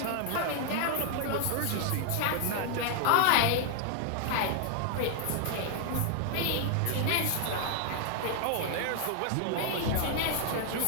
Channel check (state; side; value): different; both; correlation 0.00